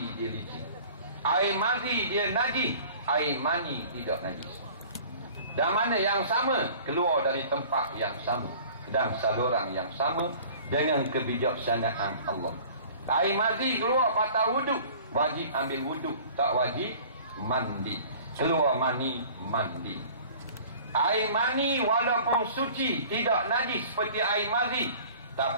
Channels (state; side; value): inverted; both; correlation -0.47